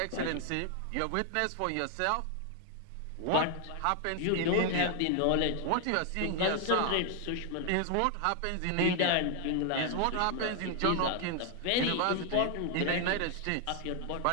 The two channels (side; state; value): both; different; correlation 0.00